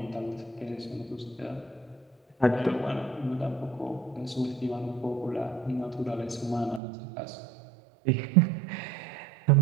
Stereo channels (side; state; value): left; drops out; at 6.8 s